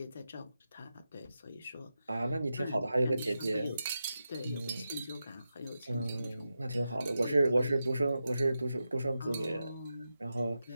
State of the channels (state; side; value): inverted; both; correlation -0.90